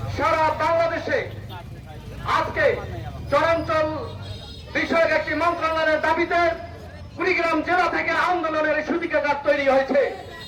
সারা বাংলাদেশে আজকে চরাঞ্চল বিষয়ক একটি মন্ত্রণালয়ের দাবিতে কুড়িগ্রাম জেলা থেকে আন্দোলনের সূতিকাগার তৈরি হয়েছে।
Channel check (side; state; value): both; identical; correlation 1.00